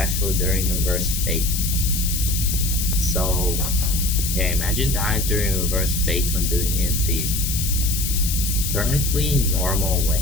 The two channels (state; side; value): noise; left; hiss, 3 dB below the sound